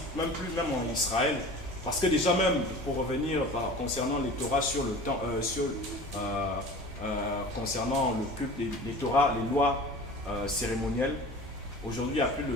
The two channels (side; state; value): both; normal; correlation 0.39